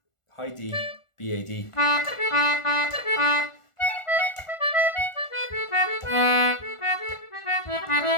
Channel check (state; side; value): late; right; 1.4 ms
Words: high D B A D.